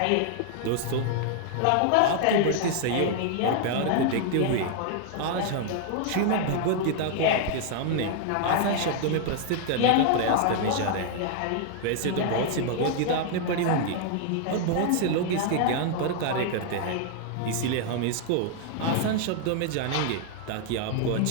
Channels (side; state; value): both; different; correlation 0.00